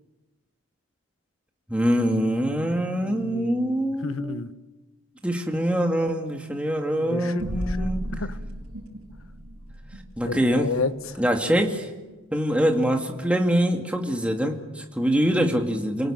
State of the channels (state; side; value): normal; both; correlation 0.82